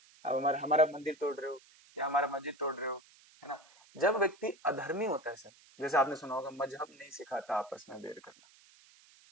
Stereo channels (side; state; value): right; noise; hiss, 26 dB below the sound